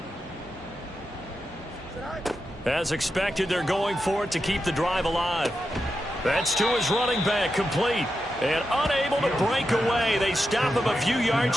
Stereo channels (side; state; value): both; normal; correlation 0.88